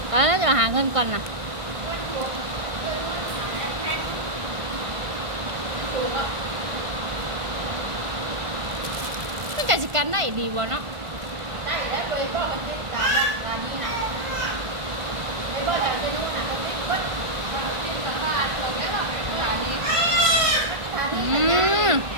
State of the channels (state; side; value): late; left; 1.5 ms